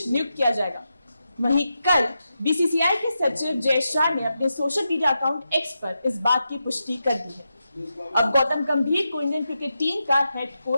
नियुक्त किया जाएगा। वहीं कल बीसीसीआई के सचिव जय शाह ने अपने सोशल मीडिया अकाउंट एक्स पर इस बात की पुष्टि कर दी है। अब गौतम गंभीर को इंडियन क्रिकेट टीम का हेड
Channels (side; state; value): both; inverted; correlation -0.88